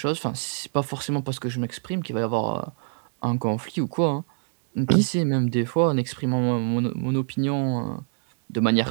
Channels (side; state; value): left; silent; digital silence